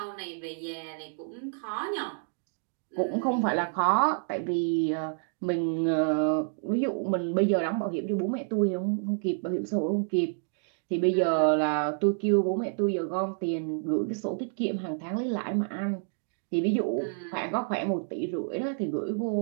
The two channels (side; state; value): left; silent; digital silence